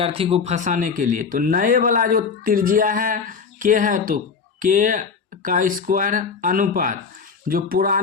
को फंसाने के लिए। तो नए वाला जो त्रिज्या है के है, तो के का स्क्वायर अनुपात, जो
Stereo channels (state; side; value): quieter; right; 5.6 dB